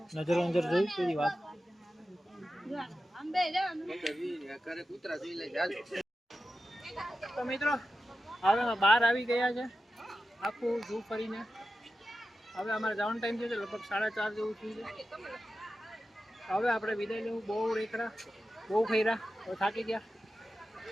નજર જોઈ તેરી વાત. તો મિત્રો હવે અમે બહાર આવી ગયા છે આખું ઝૂ ફરીને. હવે અમારે જવાનો ટાઈમ થયો છે લગભગ 4:30 જેવું થયું છે. હવે આપણે વિદાય લેવું. બહુ રેખડા બહુ ખૈરા હવે થાકી ગયા.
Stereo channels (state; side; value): normal; both; correlation 0.92